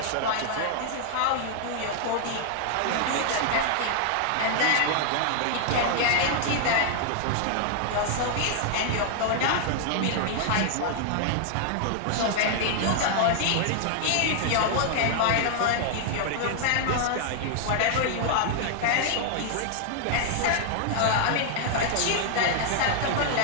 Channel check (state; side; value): different; both; correlation 0.00